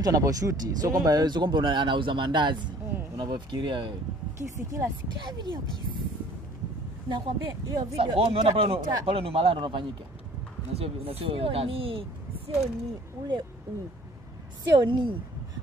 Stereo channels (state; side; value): normal; both; correlation 0.53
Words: anaposhoot sio kwamba anauza mandazi. Unapofikiria wewe. Kisi kila video kisi. Nakwambia hiyo video. Sasa umeona pale ni malaya ndo unafanyika. Na sio kazi. Sio ni ule sio ni.